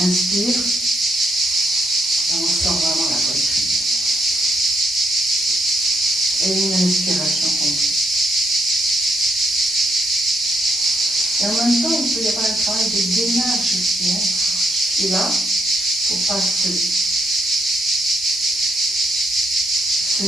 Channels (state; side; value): normal; both; correlation 0.74